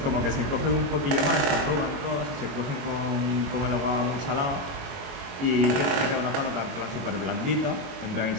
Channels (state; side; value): late; left; 22 ms